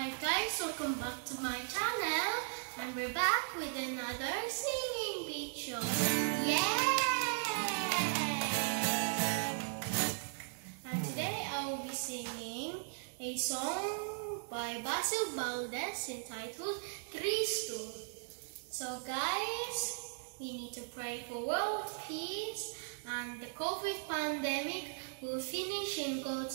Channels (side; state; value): left; silent; digital silence